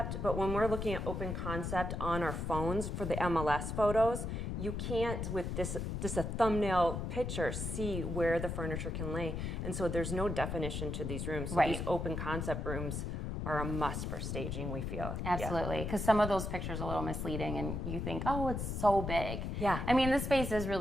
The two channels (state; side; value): noise; left; rumble, 3 dB below the sound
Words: but when we're looking at open concept on our phones for the MLS photos, you can't, with just a thumbnail picture, see where the furniture can lay. And so there's no definition to these rooms. So these open concept rooms are a must for staging, we feel. Absolutely, because some of those pictures are a little misleading and you think, oh, it's so big. Yeah. I mean, the space is